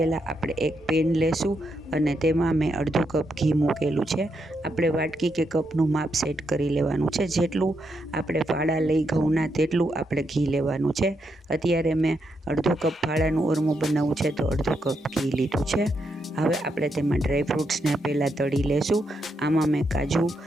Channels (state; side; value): normal; both; correlation 0.81